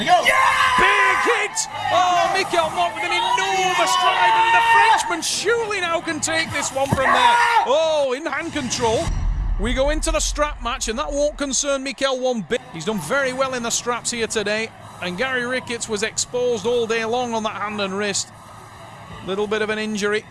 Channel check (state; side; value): identical; both; correlation 1.00